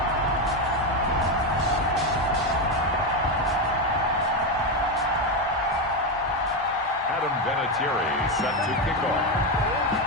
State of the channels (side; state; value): both; normal; correlation 0.10